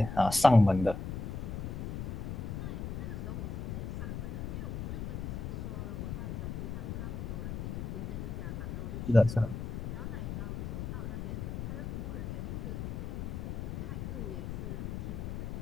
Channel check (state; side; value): noise; left; rumble, 4 dB below the sound